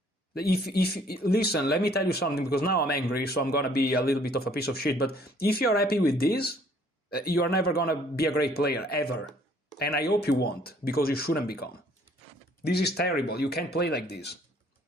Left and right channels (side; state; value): both; normal; correlation 0.59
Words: If listen, let me tell you something, because now I'm angry, so I'm gonna be a little bit of a piece of shit. But if you're happy with this, you are never gonna be a great player ever, and I hope you won't, because you shouldn't become. This is terrible. You can't play like this.